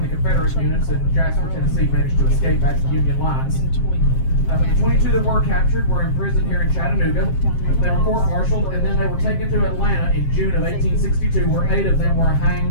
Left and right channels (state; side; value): late; right; 7.5 ms